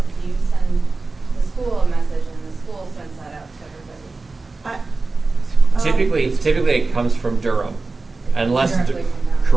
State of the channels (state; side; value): quieter; left; 3.7 dB